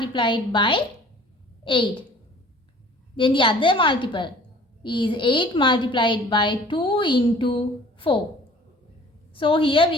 by 8. Then the other multiple is 8 multiplied by 2 into 4. So here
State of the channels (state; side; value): normal; both; correlation 0.49